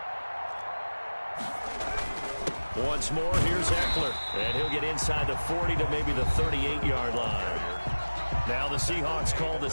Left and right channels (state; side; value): inverted; both; correlation -1.00